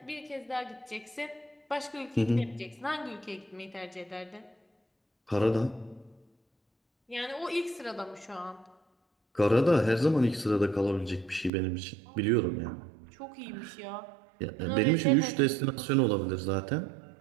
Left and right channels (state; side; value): drops out; left; at 11.5 s